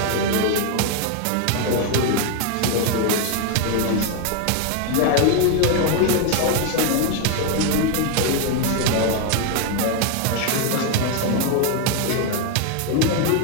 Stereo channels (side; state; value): both; different; correlation 0.01